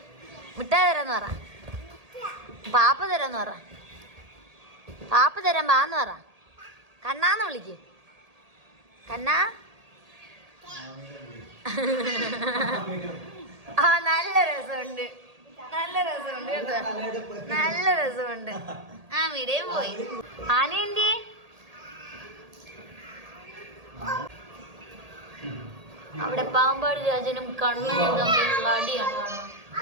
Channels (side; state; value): left; late; 1.8 ms